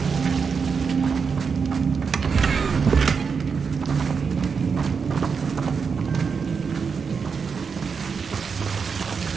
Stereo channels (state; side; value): quieter; left; 5.7 dB